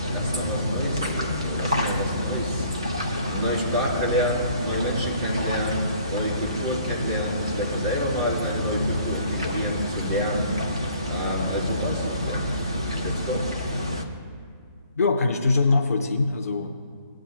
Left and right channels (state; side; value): inverted; both; correlation -0.59